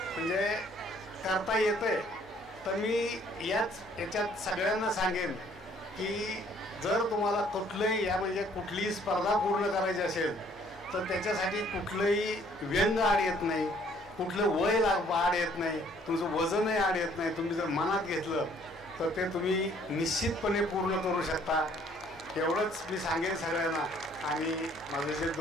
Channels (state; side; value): normal; both; correlation 0.61